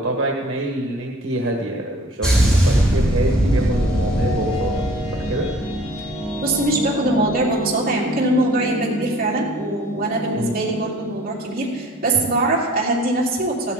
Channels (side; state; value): both; normal; correlation 0.49